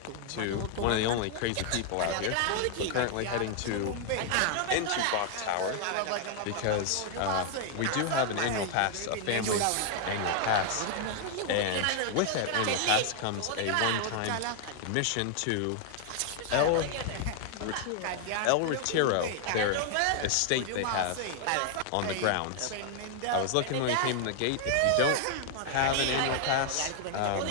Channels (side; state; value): both; different; correlation 0.00